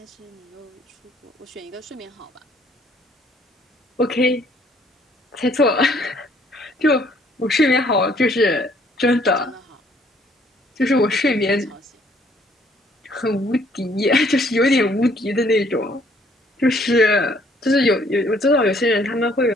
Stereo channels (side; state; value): both; normal; correlation 0.63